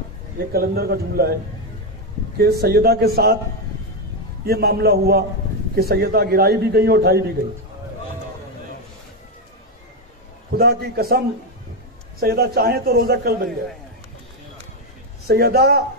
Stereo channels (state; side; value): normal; both; correlation 0.06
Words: ये कलंदर का जुमला है कि सैयदा के साथ ये मामला हुआ कि सैयदा गिराई भी गई और उठाई भी गई। खुदा की कसम, सैयदा चाहे तो रोजा कल बन जाए। सैयदा